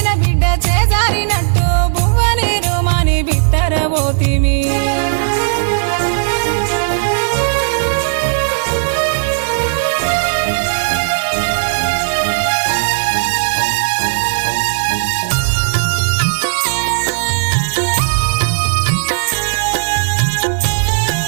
బిడ్డ చేజారినట్టు బువ్వనీరు మాని బిత్తరబోతిమి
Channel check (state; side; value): silent; left; digital silence